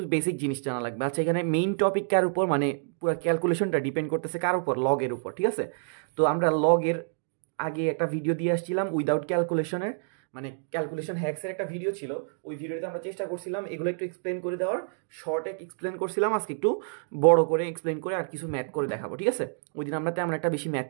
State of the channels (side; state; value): left; silent; digital silence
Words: বেসিক জিনিস জানা লাগবে। আচ্ছা, এখানে মেইন টপিক কার উপর, মানে পুরো ক্যালকুলেশনটা ডিপেন্ড করতেছে কার উপর, লগের উপর। ঠিক আছে, তো আমরা লগের আগে একটা ভিডিও দিয়ে আসছিলাম উইদাউট ক্যালকুলেশনের, মানে ক্যালকুলেশন হ্যাক্সের একটা ভিডিও ছিল। ওই ভিডিওতে আমরা চেষ্টা করছিলাম এগুলো একটু এক্সপ্লেন করে দেওয়ার, শর্টে এক্সপ্লেন করছিলাম। আজকে একটু বড় করে এক্সপ্লেন করে আর কিছু ম্যাথ করে দেখাবো। ঠিক আছে, ওই দিন আমরা তেমন একটা বেশি